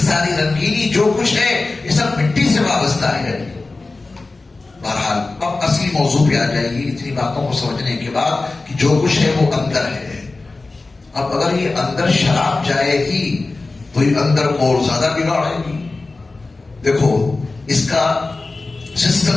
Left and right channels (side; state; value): right; quieter; 3.5 dB